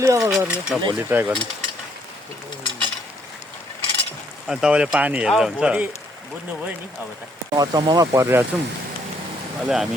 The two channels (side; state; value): both; normal; correlation 0.69